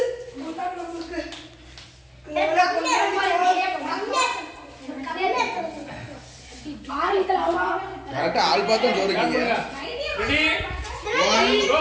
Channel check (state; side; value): identical; both; correlation 1.00